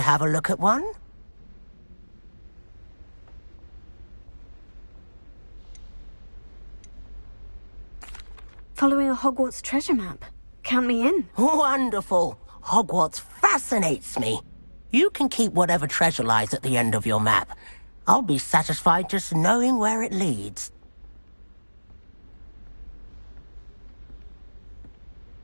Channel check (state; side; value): inverted; both; correlation -1.00